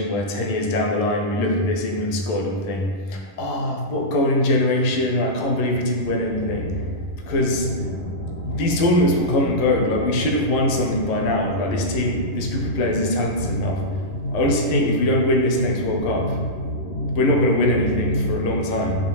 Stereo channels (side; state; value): right; late; 11 ms